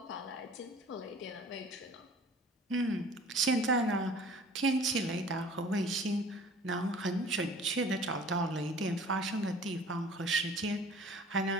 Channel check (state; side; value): normal; both; correlation 0.47